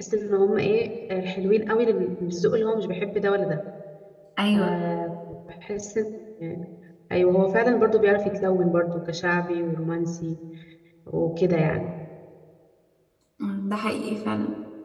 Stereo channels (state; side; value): identical; both; correlation 1.00